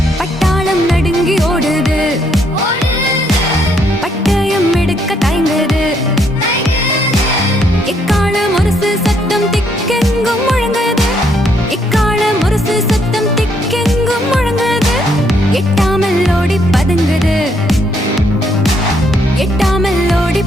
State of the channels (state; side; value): normal; both; correlation 0.71